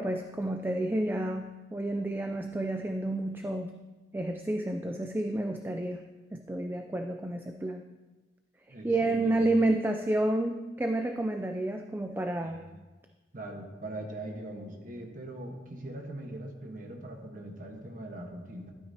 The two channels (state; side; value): normal; both; correlation 0.85